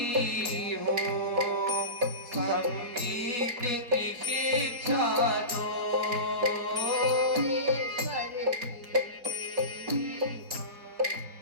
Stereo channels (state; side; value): late; left; 4.2 ms